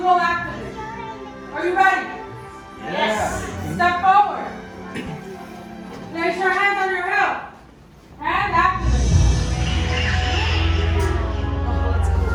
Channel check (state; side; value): identical; both; correlation 1.00